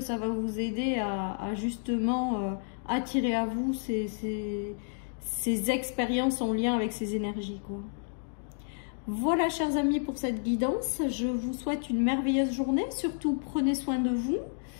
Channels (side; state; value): right; silent; digital silence